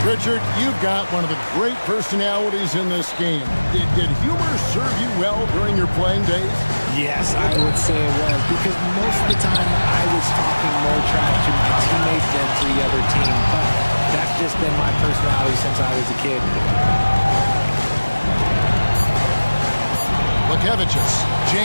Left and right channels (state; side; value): inverted; both; correlation -1.00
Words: Richard, you've got one of the great personalities in this game. Did humor serve you well during your playing days? Yes, I would say it was, because most of the time I was talking more trash to my teammates than to the other team. But that just been my personality since I was a kid. Lukevicius.